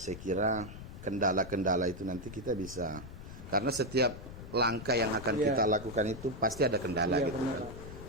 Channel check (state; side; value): noise; left; rumble, 12 dB below the sound